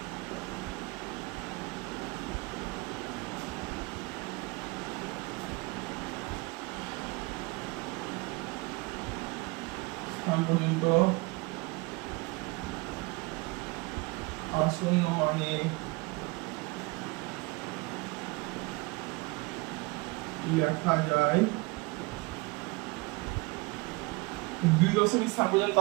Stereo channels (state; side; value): quieter; left; 25.6 dB